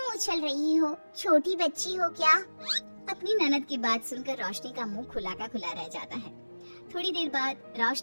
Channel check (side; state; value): both; inverted; correlation -1.00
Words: उछल रही हो? छोटी बच्ची हो क्या? अपनी ननद की बात सुनकर रोशनी का मुंह खुला का खुला रह जाता है। थोड़ी देर बाद